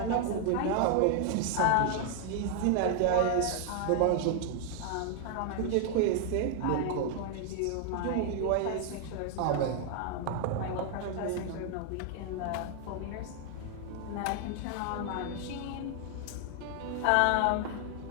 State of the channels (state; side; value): different; both; correlation 0.00